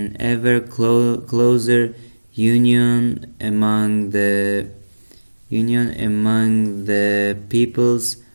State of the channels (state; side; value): inverted; both; correlation -1.00